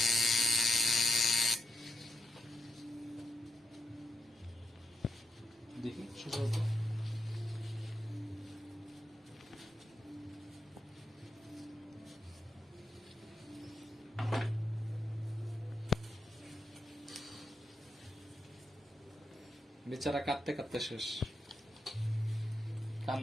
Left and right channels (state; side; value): normal; both; correlation 0.85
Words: দেখি সোজা হতো। বেচারা কাঁদতে কাঁদতে শেষ,